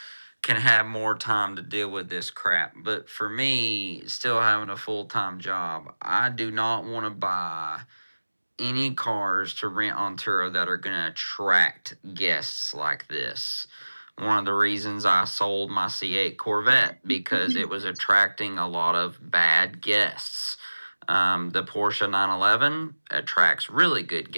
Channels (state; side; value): inverted; both; correlation -1.00